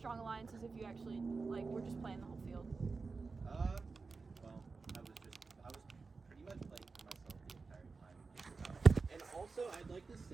alliances if you actually like were just playing the whole field? Well, I was pretty much playing for myself the entire time. And also, I'd like to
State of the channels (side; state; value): left; quieter; 4.3 dB